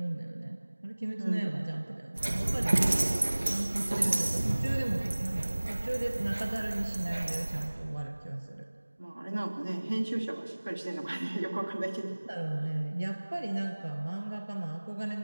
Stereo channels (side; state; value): both; inverted; correlation -1.00